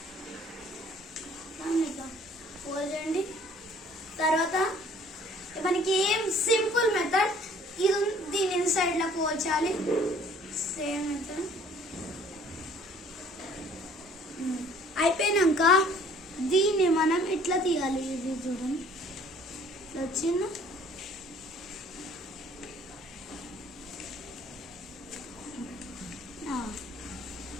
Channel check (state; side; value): normal; both; correlation 0.55